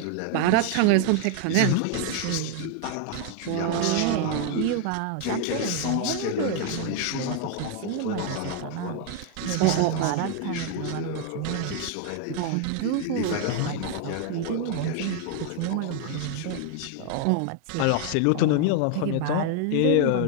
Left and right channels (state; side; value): different; both; correlation 0.00